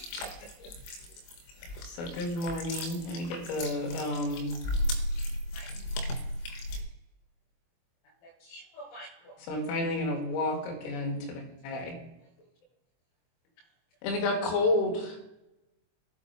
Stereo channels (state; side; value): late; right; 24 ms